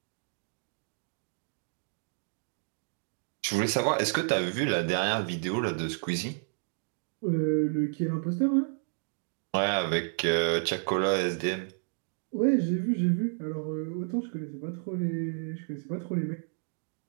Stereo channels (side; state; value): left; silent; 57 dB below the other